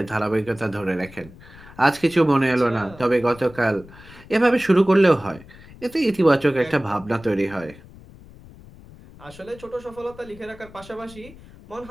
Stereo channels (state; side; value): noise; left; rumble, 21 dB below the sound